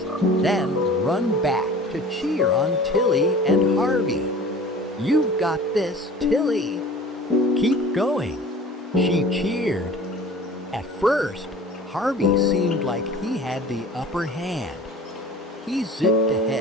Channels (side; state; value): both; normal; correlation 0.43